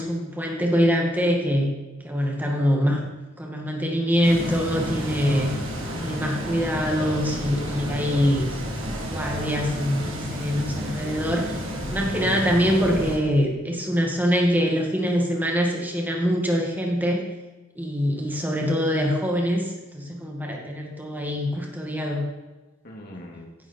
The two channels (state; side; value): normal; both; correlation 0.77